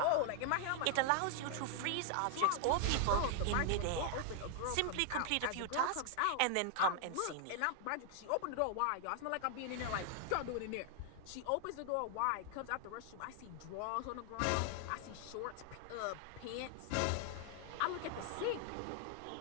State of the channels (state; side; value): different; both; correlation 0.00